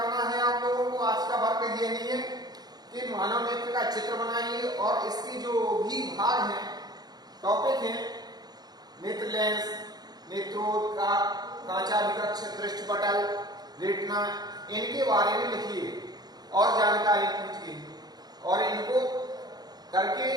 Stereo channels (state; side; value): late; left; 0.19 ms